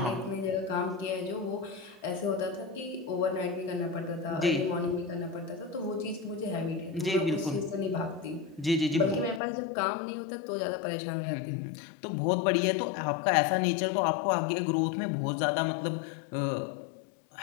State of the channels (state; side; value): drops out; right; at 9.4 s